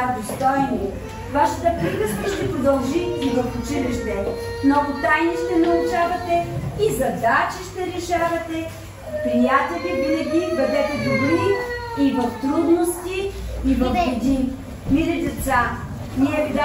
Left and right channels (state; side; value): identical; both; correlation 1.00